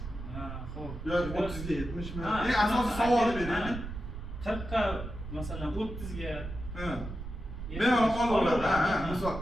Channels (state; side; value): noise; right; rumble, 9 dB below the sound